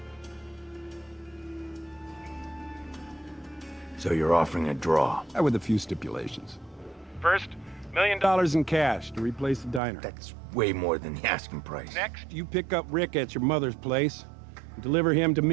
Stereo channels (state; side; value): drops out; left; at 9.8 s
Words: So you're offering a draw? With a few stipulations. First, $1 million in cash to replace the diner. That's way more than the asking price. next. You pick up Rick at your mother's place and deliver him to